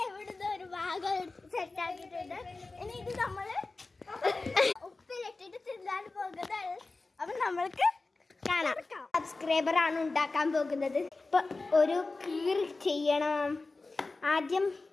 ഒരു ഭാഗം സെറ്റാക്കിയിട്ടുണ്ട്. ഇനി ഇത് നമ്മള് ഉപ്പിലിട്ടിട്ട് തിന്നാൻ പോകുന്നത്. അപ്പൊ നമ്മൾക്ക് കാണാം. സബ്സ്ക്രൈബർ ആണ് ഉണ്ടാക്കാൻ പോകുന്നത്. ഇപ്പൊ ഒരു കീറി ചെയ്യണം. ആദ്യം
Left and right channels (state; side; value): quieter; right; 3.5 dB